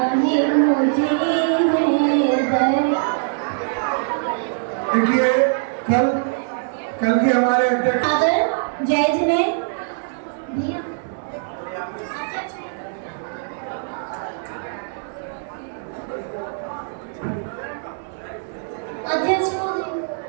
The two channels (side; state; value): left; silent; digital silence